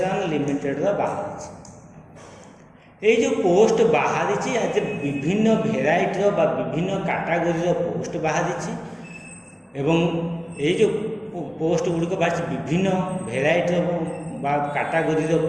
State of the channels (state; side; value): identical; both; correlation 1.00